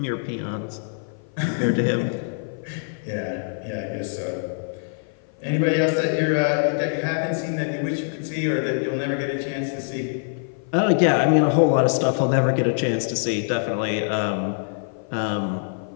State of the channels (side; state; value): right; silent; 56 dB below the other